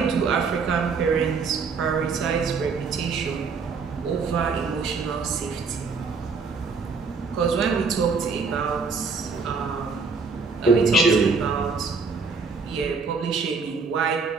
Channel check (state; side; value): quieter; left; 4.8 dB